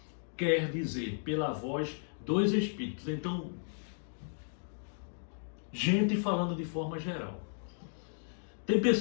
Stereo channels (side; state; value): right; silent; digital silence